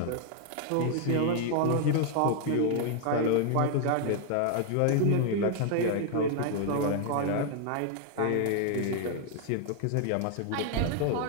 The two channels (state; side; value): different; both; correlation 0.00